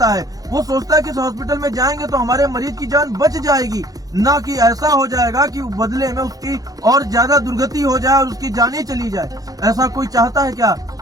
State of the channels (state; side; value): late; left; 0.18 ms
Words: है। वो सोचता है कि इस हॉस्पिटल में जाएंगे तो हमारे मरीज की जान बच जाएगी, ना कि ऐसा हो जाएगा कि बदले में उसकी और ज्यादा दुर्गति हो जाए और उसकी जान ही चली जाए। ऐसा कोई चाहता है क्या?